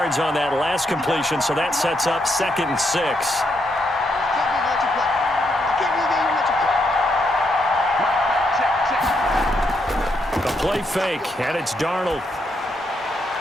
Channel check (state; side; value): normal; both; correlation 0.78